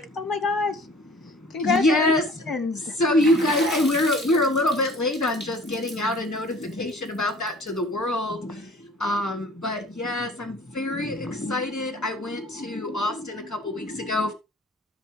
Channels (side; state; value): both; normal; correlation 0.48